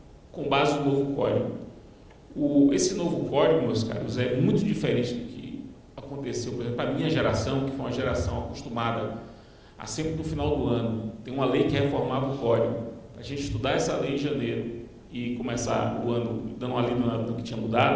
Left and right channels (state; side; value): identical; both; correlation 1.00